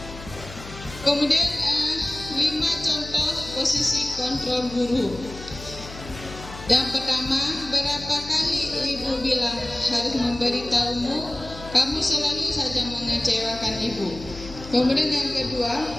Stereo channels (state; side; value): noise; left; hum, 14 dB below the sound